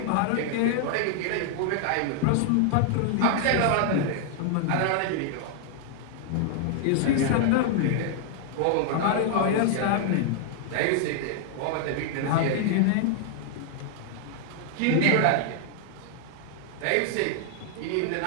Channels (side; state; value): both; different; correlation 0.00